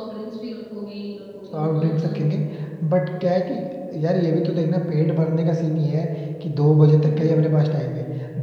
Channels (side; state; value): both; identical; correlation 1.00